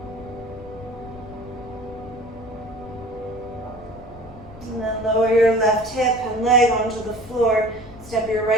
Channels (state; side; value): noise; left; rumble, 17 dB below the sound